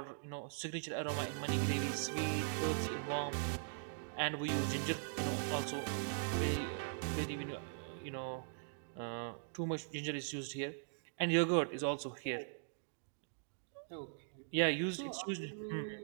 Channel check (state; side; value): silent; left; digital silence